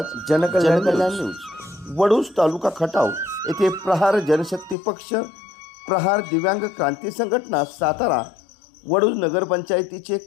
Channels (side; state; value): right; drops out; at 4.8 s